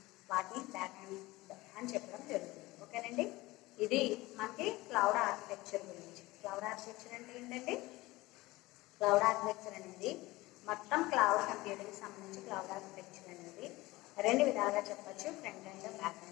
వాటిని బ్యాక్ అండ్ అని చెప్పడం జరుగుతుంది. ఓకేనండి, ఇది మనకి క్లౌడ్ ఆర్కిటెక్చర్ గురించి. క్లౌడ్ ఆర్కిటెక్చర్ అంటే ఏంటండి, క్లౌడ్ ఆర్కిటెక్చర్ అనేది మొత్తం క్లౌడ్ కంప్యూటింగ్ సంబంధించి క్లౌడ్ ఆర్కిటెక్చర్ అనేది రెండు విధాలుగా చెప్పచ్చు, front and back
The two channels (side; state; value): right; quieter; 20.0 dB